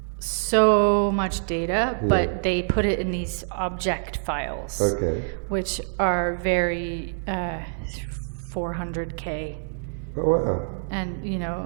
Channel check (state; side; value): silent; left; 59 dB below the other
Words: So much data, but they put it in these object files, which are very 400K. Oh, wow. And